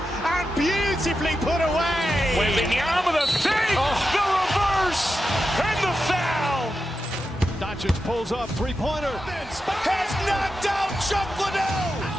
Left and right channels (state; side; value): normal; both; correlation 0.89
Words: and beautifully put away. Waving the arm of the fake, the reverse, and the foul. Doncic pulls up, three-pointer. Has knocked out Chuck Liddell.